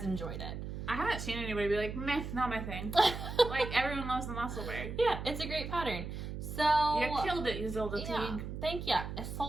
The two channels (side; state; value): right; noise; hum, 6 dB below the sound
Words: enjoyed it. I haven't seen anybody be like, meh, not my thing. Everyone loves the Musselburgh. Yeah, it's a great pattern. So you killed it, Ysolda Teague. Thank you,